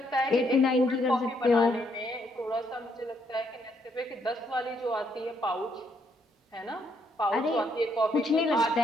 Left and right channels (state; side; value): normal; both; correlation 0.73